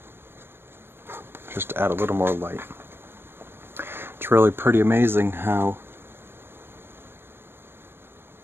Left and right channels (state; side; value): late; left; 0.11 ms